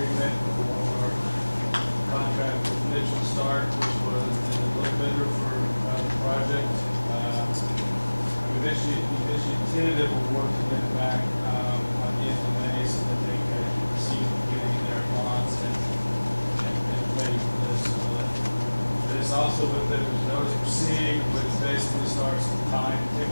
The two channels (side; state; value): both; inverted; correlation -1.00